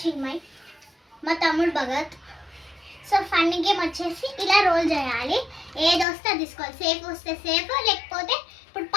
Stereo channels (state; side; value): drops out; right; at 6.1 s